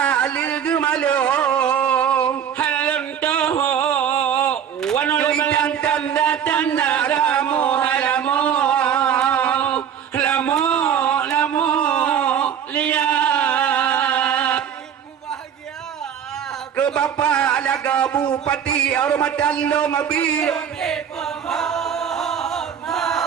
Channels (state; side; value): quieter; left; 8.5 dB